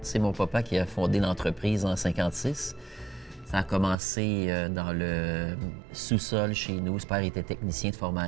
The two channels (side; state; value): left; drops out; at 4.0 s